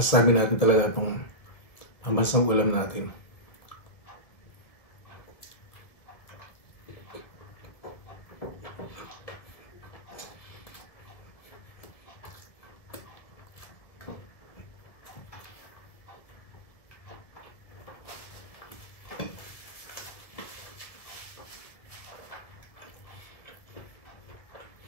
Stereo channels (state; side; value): late; right; 1.9 ms